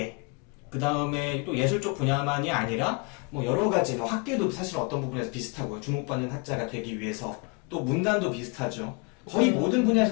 그 다음에 또 예술 쪽 분야만이 아니라 뭐 여러 가지 뭐 학계도 사실 어떤 부분에서 비슷하고요. 주목받는 학자가 되기 위해서 또 문단도 비슷하죠. 거의 모든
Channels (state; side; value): quieter; right; 31.7 dB